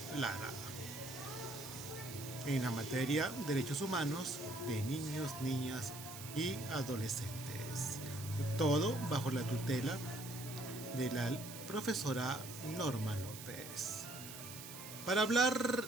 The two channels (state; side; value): noise; right; hiss, 11 dB below the sound